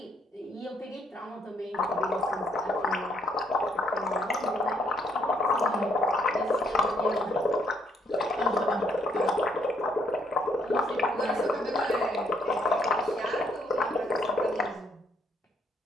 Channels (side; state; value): both; normal; correlation 0.69